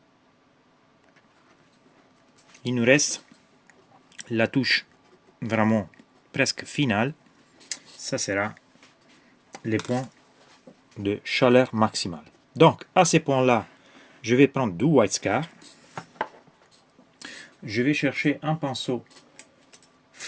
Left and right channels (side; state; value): both; identical; correlation 1.00